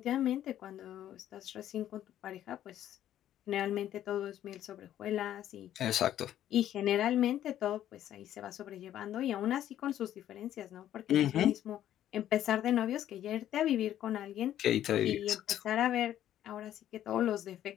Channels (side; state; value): right; quieter; 11.7 dB